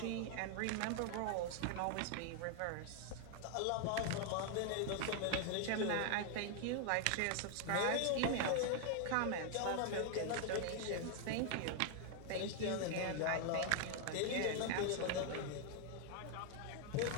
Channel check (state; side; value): different; both; correlation 0.00